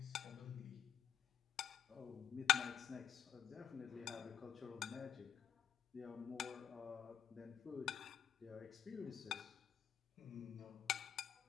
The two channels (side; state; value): right; quieter; 8.7 dB